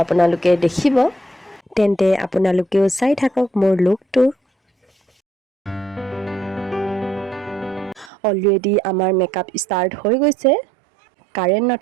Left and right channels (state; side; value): drops out; left; at 8.1 s